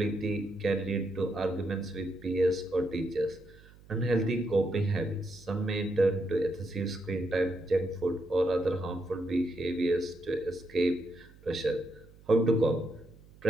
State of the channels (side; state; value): right; noise; hum, 24 dB below the sound